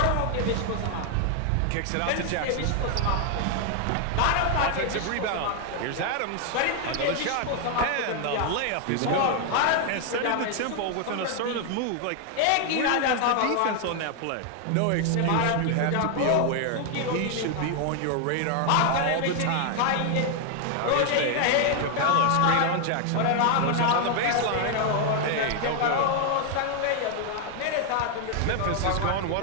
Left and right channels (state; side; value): different; both; correlation 0.00